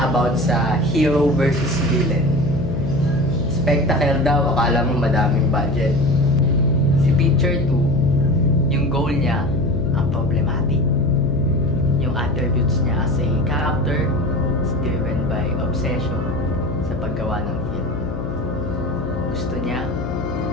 about sa hero versus villain. Spectacle daw, akala mo madaming budget. Si Picture 2, yung goal niya, ang problematic. Yung attributes niya as a character is driven by obsession sa paggawa ng film. Gusto niya,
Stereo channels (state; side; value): noise; left; hum, 6 dB below the sound